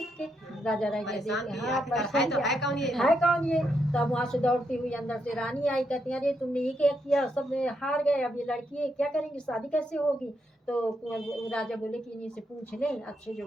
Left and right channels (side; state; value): both; normal; correlation 0.79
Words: के। है कौन ये। तब वहाँ से दौड़ती हुई अंदर से रानी आई, कहती अरे तुमने ये क्या किया, सब हार गए, अब ये लड़की है क्या करेंगे, शादी कैसे होगी। तो राजा बोले कि इन्हीं से पूछ लें, अच्छे